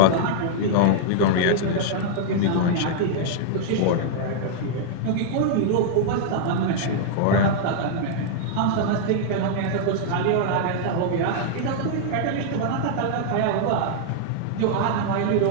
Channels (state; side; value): different; both; correlation -0.01